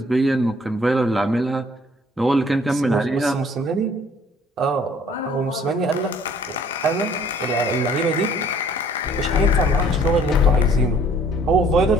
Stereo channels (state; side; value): normal; both; correlation 0.57